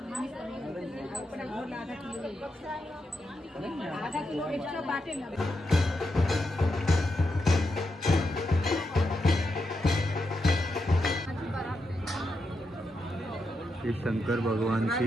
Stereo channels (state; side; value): normal; both; correlation 0.85